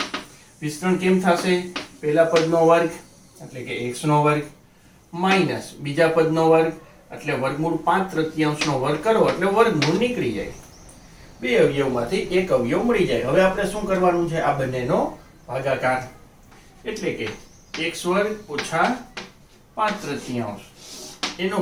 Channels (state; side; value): identical; both; correlation 1.00